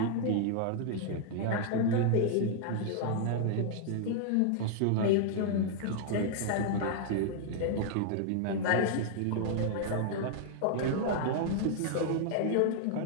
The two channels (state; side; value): different; both; correlation 0.00